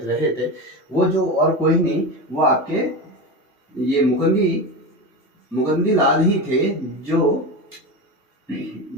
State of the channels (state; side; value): normal; both; correlation 0.22